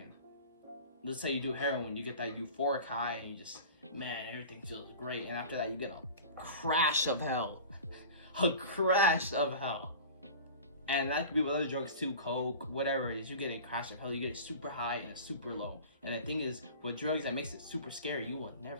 Let's say you do heroin, you get that euphoric high and you just, man, everything feels great. And after that, you get a crash of hell. A crash of hell. And that could be with other drugs too, coke, whatever it is. You get a crash of hell, you get a super high and a super low. And the thing is, with drugs, that makes it super scary. You will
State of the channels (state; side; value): inverted; both; correlation -0.38